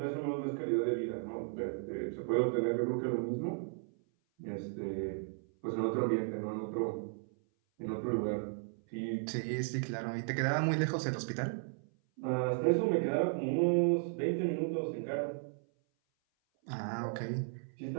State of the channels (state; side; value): silent; left; 54 dB below the other